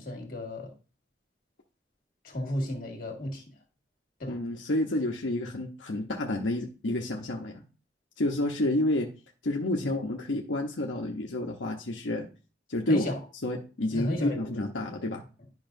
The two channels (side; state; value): both; normal; correlation 0.48